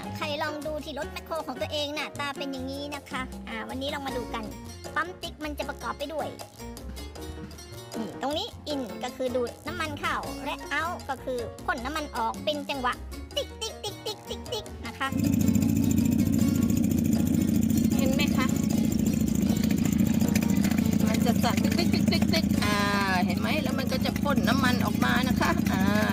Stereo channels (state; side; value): identical; both; correlation 1.00